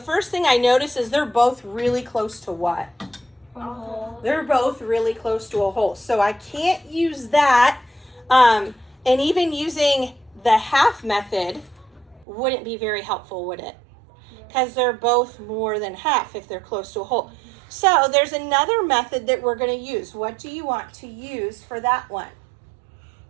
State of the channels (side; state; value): left; drops out; at 12.2 s